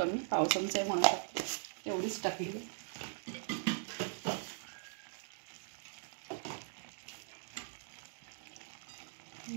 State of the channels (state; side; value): silent; left; digital silence